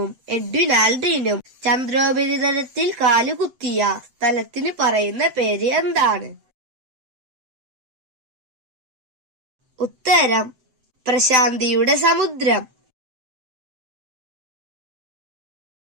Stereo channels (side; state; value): left; late; 7.9 ms